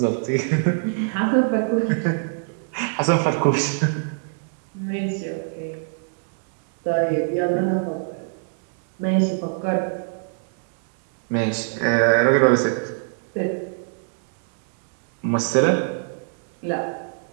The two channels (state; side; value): silent; left; digital silence